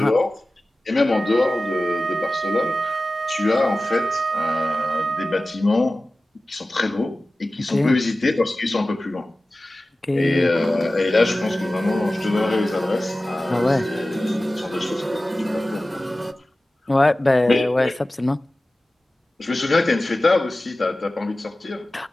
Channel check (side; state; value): both; normal; correlation 0.96